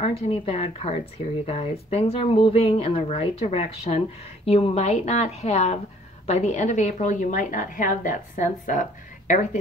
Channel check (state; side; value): normal; both; correlation 0.58